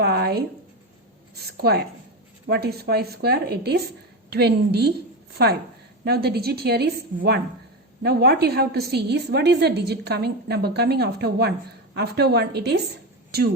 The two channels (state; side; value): normal; both; correlation 0.17